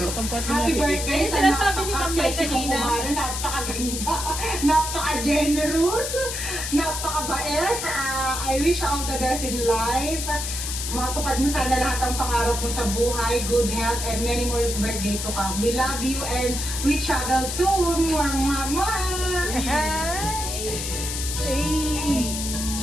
Ayun, sinasabi ni Ma'am May kanina. Napakaganda, napaka-generous, napakabait. I wish all the best in life. Matupad mo sana lahat ng pangarap mo sa buhay, good health, and many more birthday to come. We love you and we travel soon. Mwah, mwah, mwah. Eh!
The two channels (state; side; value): noise; left; hiss, 4 dB below the sound